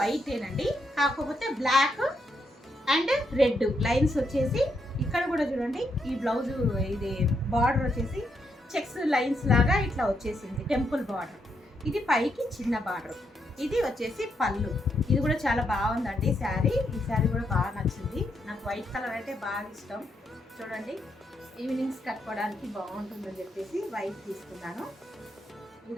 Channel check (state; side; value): normal; both; correlation 0.79